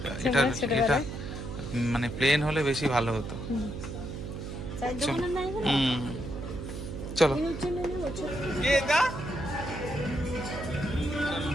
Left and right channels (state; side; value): noise; right; hum, 7 dB below the sound